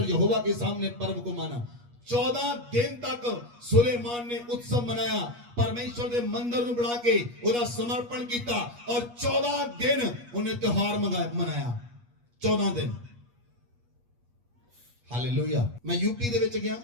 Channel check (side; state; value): left; late; 8.3 ms